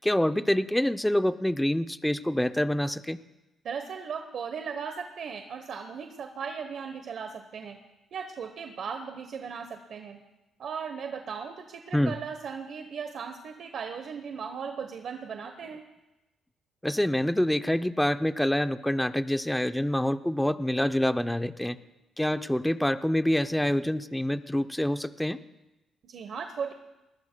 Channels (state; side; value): normal; both; correlation 0.97